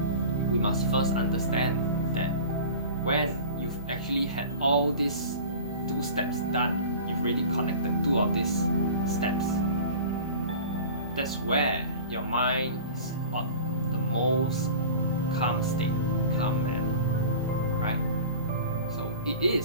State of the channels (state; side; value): inverted; both; correlation -0.38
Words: we must first understand that when you've actually had all these 2 steps done, you've already connected 2 of these steps. That's where your mind is what the most calm state, calm manner, right? So it